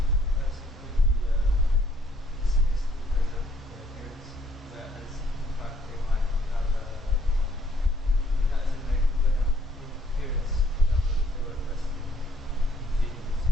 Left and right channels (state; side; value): normal; both; correlation 0.66